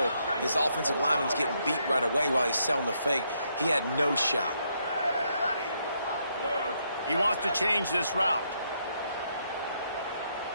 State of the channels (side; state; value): both; inverted; correlation -0.76